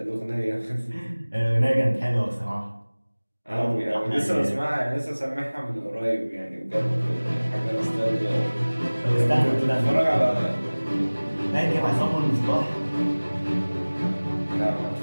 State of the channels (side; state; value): both; inverted; correlation -1.00